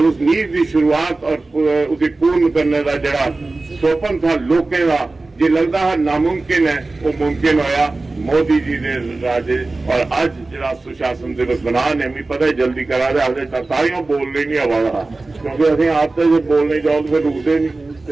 उस नींव की शुरुआत और उसे पूर्ण करने का जरा स्वप्न था लोगों का जो लगता है नामुमकिन है, वो मुमकिन होया मोदी जी ने राजे। और आज जरा सुशासन दिवस बना ने भी पता है जल्दी करा दे, हजे तालियां बोलने नहीं आवा, क्योंकि अभी आप तो जो बोलने जाओ तो फिर रुकते नहीं, तो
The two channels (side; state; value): left; quieter; 3.3 dB